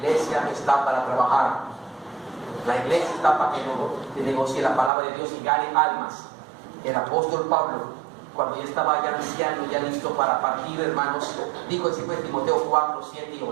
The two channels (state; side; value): drops out; left; at 4.9 s